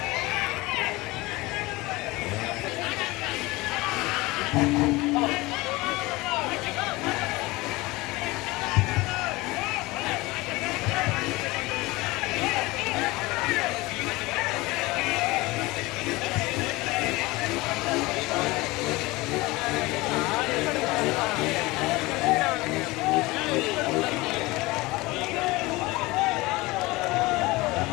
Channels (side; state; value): right; quieter; 21.6 dB